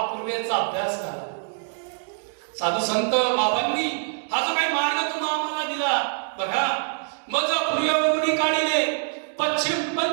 पूर्वेचा अभ्यास झाला. साधू संत बाबांनी हा जो काही मार्ग तुम्हा आम्हाला दिला बघा, मज पूर्वेवरून काढिले, पश्चिम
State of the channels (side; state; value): left; silent; 62 dB below the other